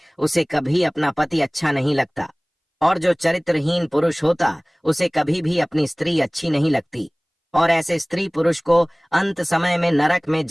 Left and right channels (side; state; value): both; identical; correlation 1.00